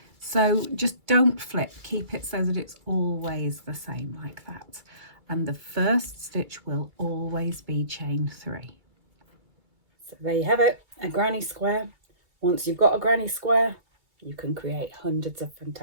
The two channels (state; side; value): late; left; 2.2 ms